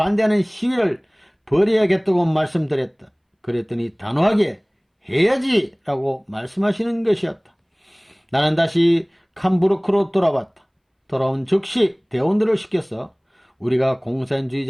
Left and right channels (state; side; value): identical; both; correlation 1.00